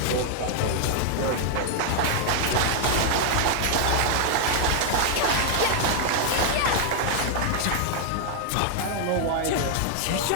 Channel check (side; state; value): both; different; correlation 0.00